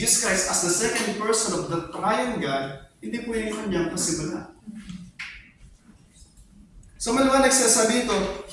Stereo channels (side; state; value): both; identical; correlation 1.00